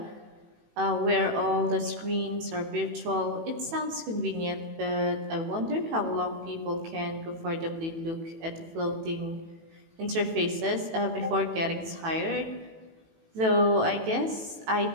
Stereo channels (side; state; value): left; late; 18 ms